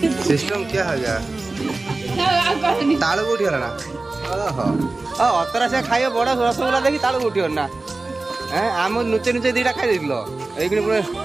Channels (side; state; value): left; quieter; 3.3 dB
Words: सिस्टम क्या है गया तालू उठी गला ना ओहो ओ अतरा से खाइए बड़ा रसगुल्ला देखी तालू उठी ना हैं आम नुचे नुचे दीटा खाई देलो एइकनी पुरा